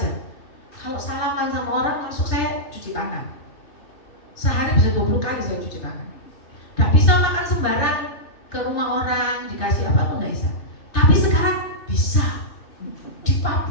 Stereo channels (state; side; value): late; right; 3.3 ms